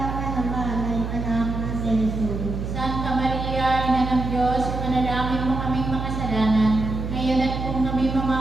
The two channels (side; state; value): right; noise; hum, 4 dB below the sound